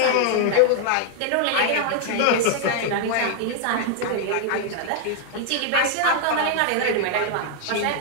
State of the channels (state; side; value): different; both; correlation 0.00